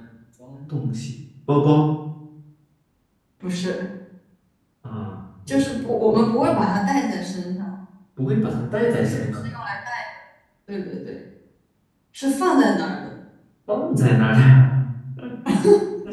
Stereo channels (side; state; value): both; identical; correlation 1.00